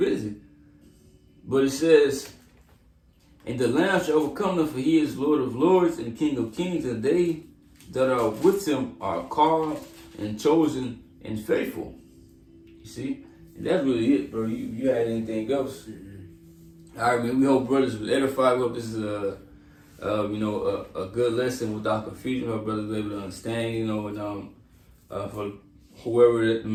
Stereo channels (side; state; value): both; identical; correlation 1.00